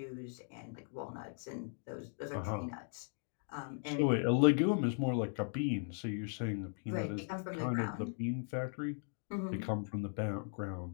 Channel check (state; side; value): silent; right; 52 dB below the other